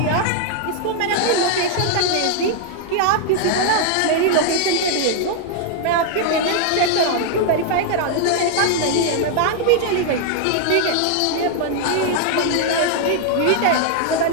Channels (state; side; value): different; both; correlation 0.00